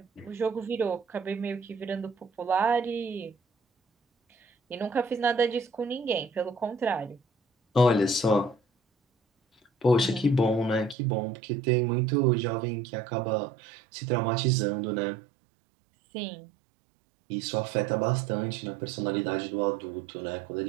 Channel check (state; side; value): drops out; left; at 11.0 s